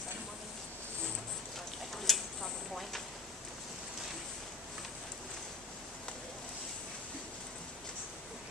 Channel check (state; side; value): quieter; right; 3.3 dB